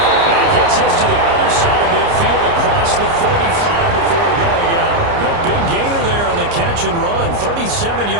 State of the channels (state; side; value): late; left; 29 ms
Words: And he gets us to the other side of midfield across the 45 before going out. The big gainer there on the catch and run, 37